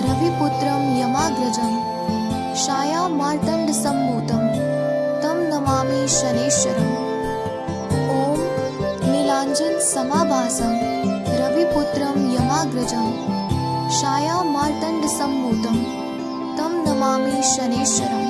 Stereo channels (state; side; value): identical; both; correlation 1.00